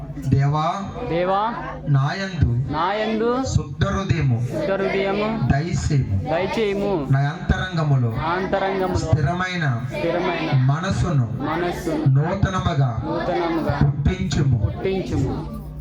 దేవా నాయందు శుద్ధ హృదయము దయచేయము. నా అంతరంగములో స్థిరమైన మనసును నూతనముగా పుట్టించుము.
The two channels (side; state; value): both; identical; correlation 1.00